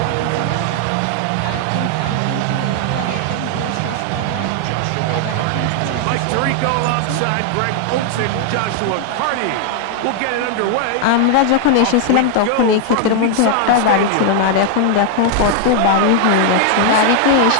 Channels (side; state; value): both; different; correlation 0.00